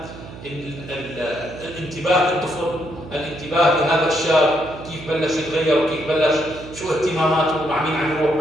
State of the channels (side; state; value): right; noise; hum, 15 dB below the sound